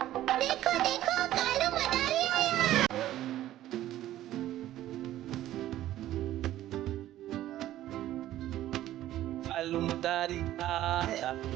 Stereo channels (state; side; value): quieter; left; 13.7 dB